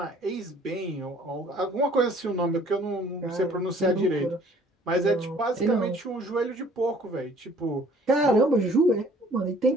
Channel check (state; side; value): normal; both; correlation 0.56